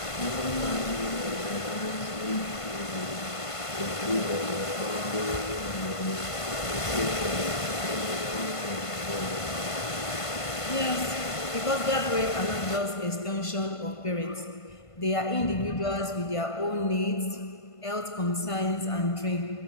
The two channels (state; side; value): late; right; 1.5 ms